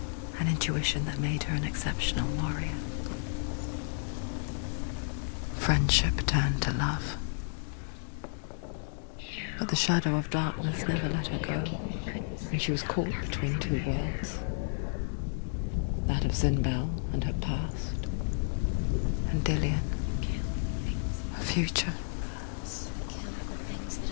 An intuition that made her an exceptional warrior. Friendship turned to love. But the shadow of darkness never let her go, and she was caught between two worlds. That of Zinbel and her past, and Dillian, her future. Kill the things that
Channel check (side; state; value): right; silent; digital silence